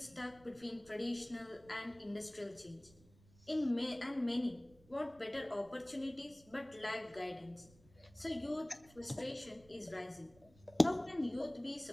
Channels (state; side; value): noise; right; rumble, 26 dB below the sound